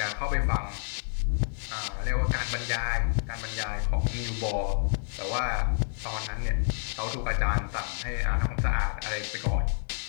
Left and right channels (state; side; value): silent; right; digital silence